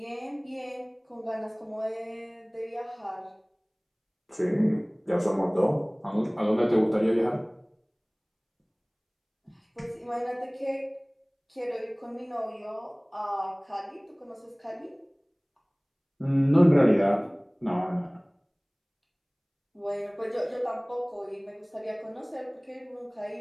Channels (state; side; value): identical; both; correlation 1.00